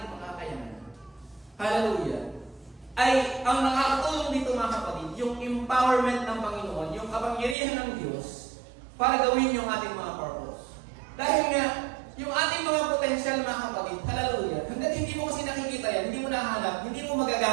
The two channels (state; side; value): drops out; left; at 7.6 s